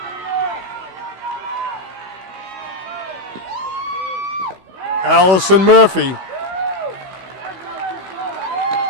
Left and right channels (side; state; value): left; late; 16 ms